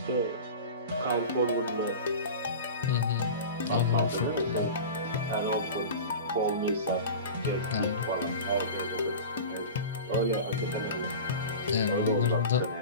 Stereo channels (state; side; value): inverted; both; correlation -0.32